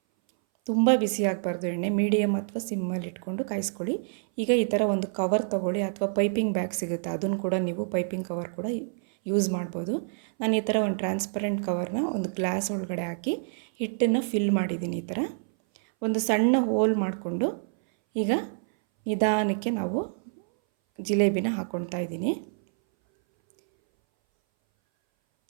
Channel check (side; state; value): left; silent; 59 dB below the other